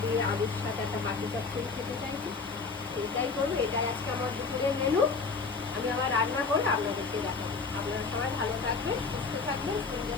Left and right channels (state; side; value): quieter; right; 4.5 dB